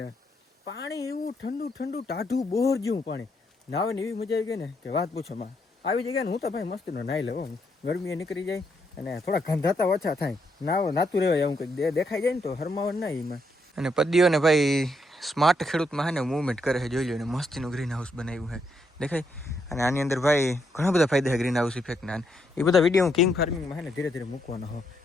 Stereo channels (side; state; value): both; normal; correlation 0.77